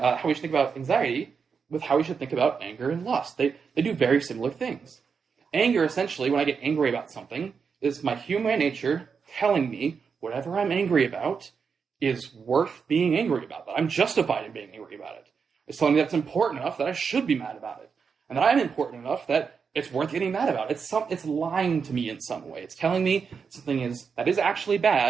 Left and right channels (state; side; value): quieter; left; 5.9 dB